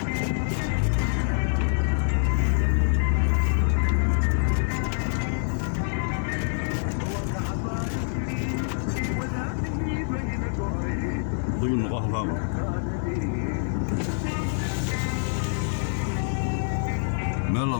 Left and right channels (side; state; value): right; silent; digital silence